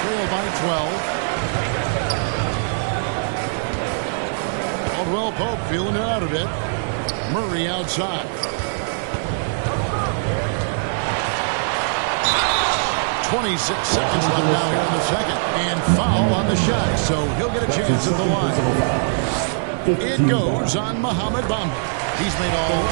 trail by 12. Caldwell Pope feeling it out a bit. Murray outside. 26 seconds left now here in the second. And foul on the shot, so he'll get a chance at the line. It goes on Mohamed Bamba. He's made all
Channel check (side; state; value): left; silent; digital silence